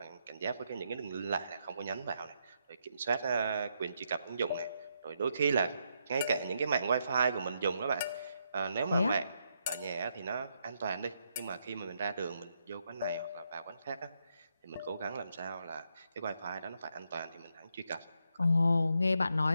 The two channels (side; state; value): both; inverted; correlation -0.79